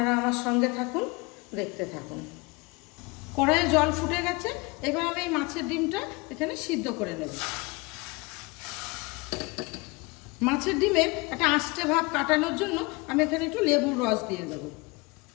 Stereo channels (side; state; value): right; quieter; 26.3 dB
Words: আমার সঙ্গে থাকুন, দেখতে থাকুন। কড়াইয়ে জল ফুটে গেছে, এবার আমি এই মাছের ডিমটা এখানে সিদ্ধ করে নেব। মাছের ডিমের একটা আঁশটে ভাব কাটানোর জন্য আমি এখানে একটু লেবুর রস দিয়ে দেব।